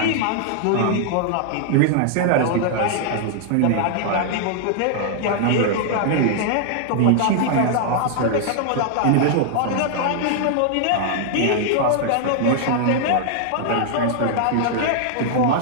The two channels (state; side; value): different; both; correlation -0.01